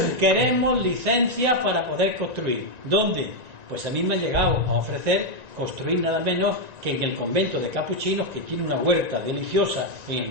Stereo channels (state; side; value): late; left; 1.9 ms